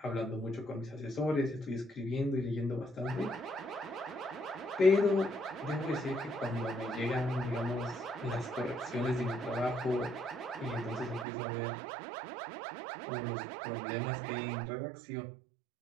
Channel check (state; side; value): drops out; left; at 11.2 s